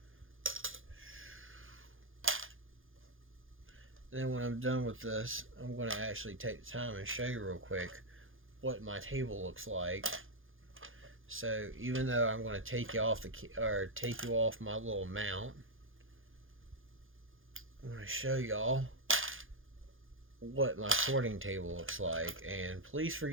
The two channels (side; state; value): left; late; 0.59 ms